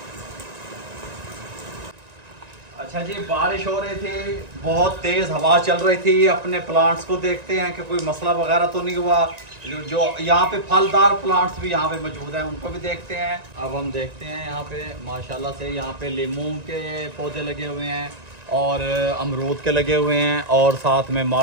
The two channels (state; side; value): late; left; 1.9 ms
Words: अच्छा जी, बारिश हो रही थी, बहुत तेज़ हवा चल रही थी। अपने प्लांट्स को देखते हैं कि कोई मसला वगैरह तो नहीं हुआ। जो यहाँ पे फलदार प्लांट्स भी यहाँ पे मौजूद हैं उनको भी देखते हैं। अब हम देखते हैं यहाँ पे माशाल्लाह से यहाँ पे लीमू के पौधे लगे हुए हैं और अमरूद के लगे हुए हैं और साथ में